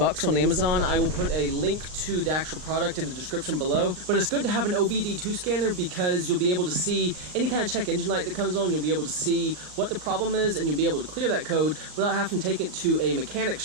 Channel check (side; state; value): left; late; 39 ms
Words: on Amazon. I will put a link to the actual product in the description below, but it's good to have an OBD2 scanner because you'll be able to see any kind of check engine light that comes on. You'll be able to see what the problem is, and you'll be able to clear that code without having to take it to a mechanic